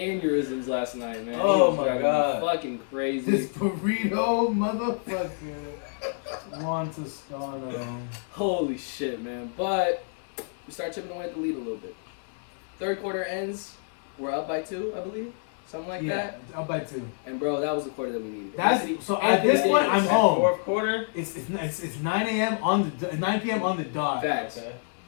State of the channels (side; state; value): right; silent; digital silence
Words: last night, man. He Oh was my driving me God. fucking crazy. This burrito motherfucker. Juan Toscano. Holy shit, man. But we start chipping away at the lead a little bit. Third quarter ends. We're up by 2, I believe. Something like Yeah, that. up by 2. And bro, that was the quarter that we needed. So at Anthony this point, I'm Davis. home. Fourth quarter. It's 9 a.m. on the 9 p.m. on the dot. Facts. Okay.